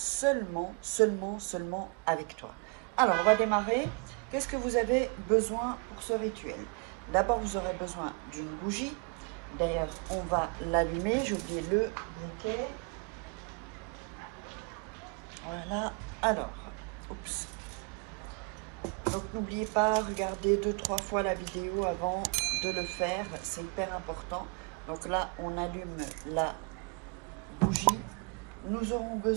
avec toi. Alors on va démarrer. Qu'est-ce que vous avez besoin pour ce rituel? D'abord vous aurez besoin d'une bougie. D'ailleurs, on va l'allumer. J'ai oublié le briquet. Voilà. Alors, oups. Donc, n'oubliez pas, regardez 2-3 fois la vidéo avant de le faire. C'est hyper important. Donc là, on allume la bougie. Nous aurons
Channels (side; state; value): left; quieter; 34.2 dB